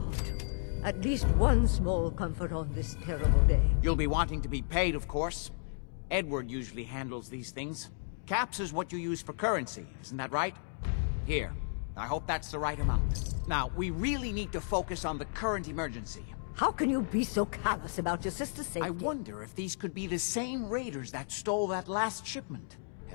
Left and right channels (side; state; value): right; silent; digital silence